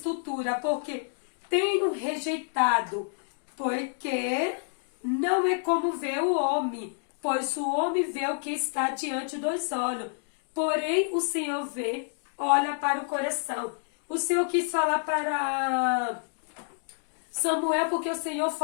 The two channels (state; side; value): silent; right; digital silence